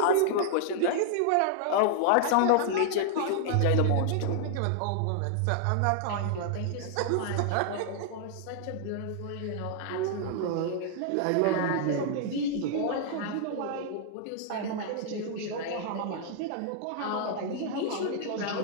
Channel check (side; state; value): both; different; correlation -0.01